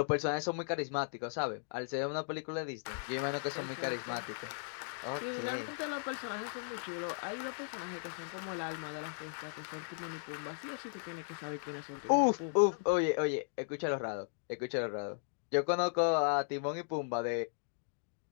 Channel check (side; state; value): right; silent; digital silence